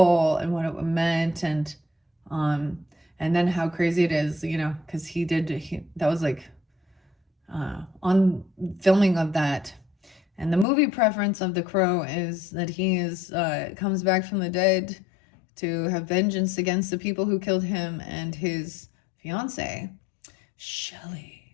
and what it meant, and then how crazy it is, you know, because that was like on filming of that. And the movie preference of the Crow is that he comes back from the dead to have vengeance against the people who killed him and his fiance, Shelley.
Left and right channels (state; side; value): drops out; right; at 10.7 s